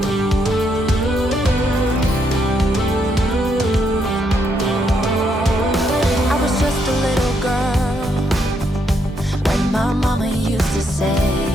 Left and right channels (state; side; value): normal; both; correlation 0.76